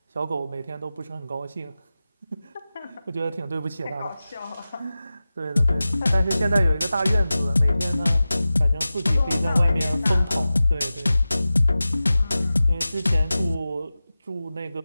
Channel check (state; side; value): inverted; both; correlation -0.95